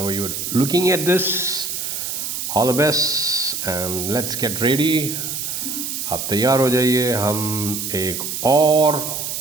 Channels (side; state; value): right; noise; hiss, 4 dB below the sound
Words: you're looking at this. All the best and let's get ready. आप तैयार हो जाइए. हम एक और